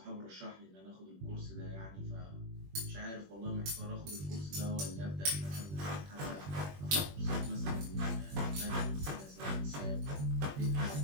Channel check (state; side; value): late; left; 21 ms